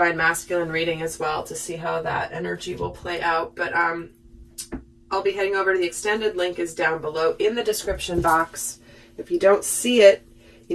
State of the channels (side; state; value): both; identical; correlation 1.00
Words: masculine reading as well to see how that energy will play out. But I'll be heading over to the extended. Link is down below in the description box. If you don't see it,